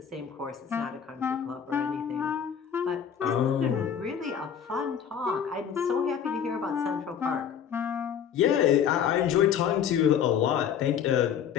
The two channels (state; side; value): quieter; right; 8.2 dB